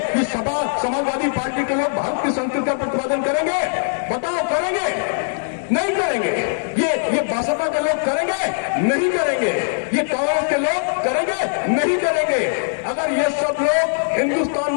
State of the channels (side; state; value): right; silent; 65 dB below the other